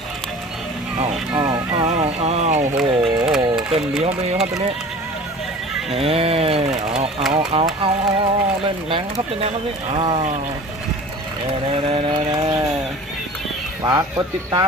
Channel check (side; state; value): both; normal; correlation 0.42